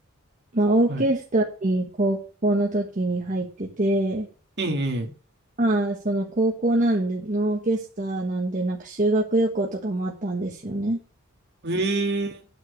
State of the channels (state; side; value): normal; both; correlation 0.55